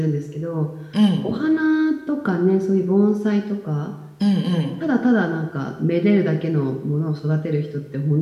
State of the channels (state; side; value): identical; both; correlation 1.00